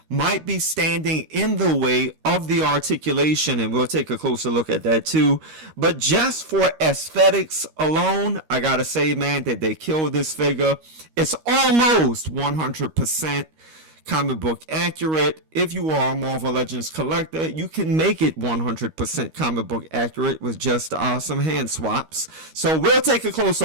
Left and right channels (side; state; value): left; late; 13 ms